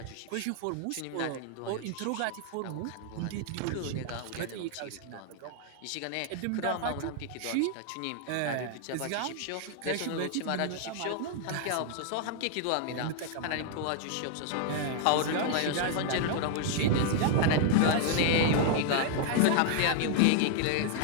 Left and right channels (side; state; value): both; different; correlation 0.00